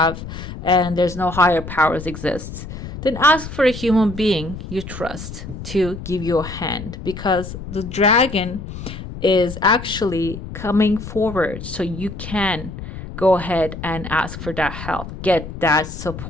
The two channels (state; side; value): noise; left; rumble, 10 dB below the sound